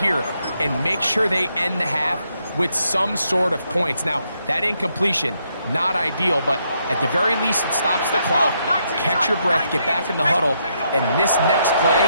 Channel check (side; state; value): both; inverted; correlation -0.77